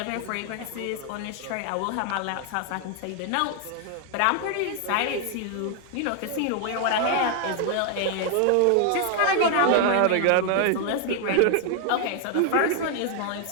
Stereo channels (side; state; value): both; different; correlation 0.00